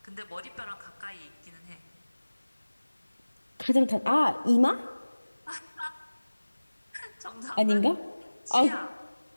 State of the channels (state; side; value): inverted; both; correlation -1.00